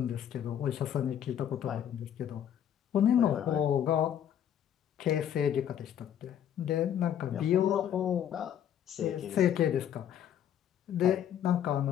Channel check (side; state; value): right; quieter; 9.8 dB